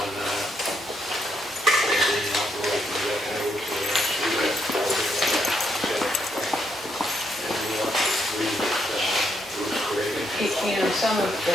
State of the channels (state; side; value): normal; both; correlation 0.77